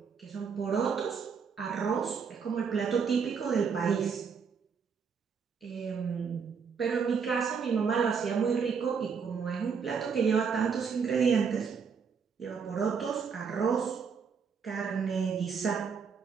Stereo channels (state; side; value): quieter; left; 6.1 dB